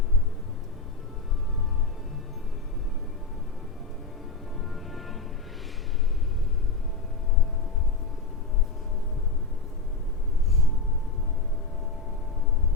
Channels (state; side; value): quieter; right; 4.0 dB